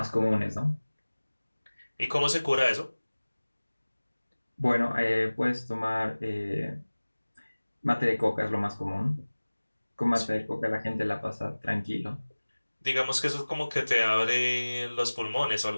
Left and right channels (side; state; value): both; inverted; correlation -1.00